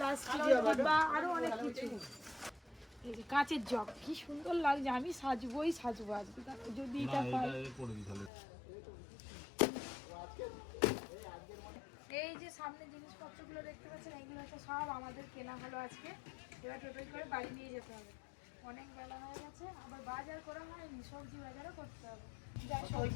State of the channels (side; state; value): right; drops out; at 8.3 s